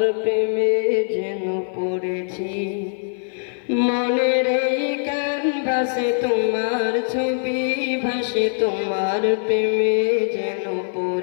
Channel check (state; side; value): silent; right; 57 dB below the other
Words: প্রেমে যেন পড়েছি। মনের এই ক্যানভাসে তোমার ছবি ভাসে, তোমার প্রেমে যেন